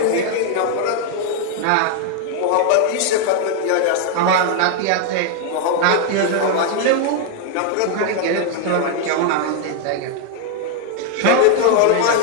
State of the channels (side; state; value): both; different; correlation 0.00